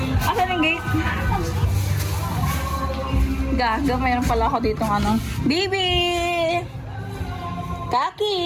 Asan yung gate? Gaga, mayroon pala ako ditong ano. Baby! Kaki!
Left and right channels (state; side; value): identical; both; correlation 1.00